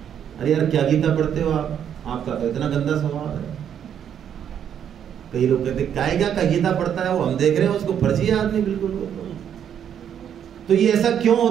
अरे यार क्या गीता पढ़ते हो आप, आपका तो इतना गंदा स्वभाव है। कई लोग कहते कायगा का गीता पढ़ता है वो, हम देख रहे हैं उसको फर्जी है आदमी बिल्कुल। तो ये ऐसा क्यों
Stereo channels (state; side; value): quieter; left; 9.0 dB